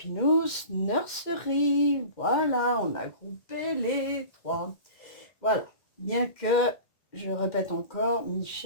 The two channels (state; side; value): late; right; 1.8 ms